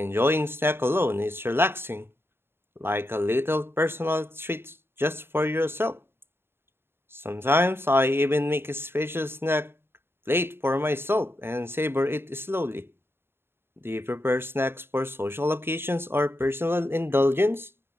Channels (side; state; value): left; late; 0.11 ms